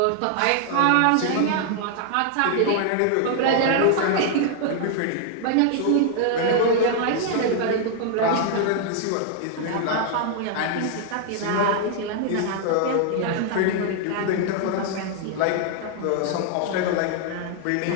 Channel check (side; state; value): both; different; correlation 0.00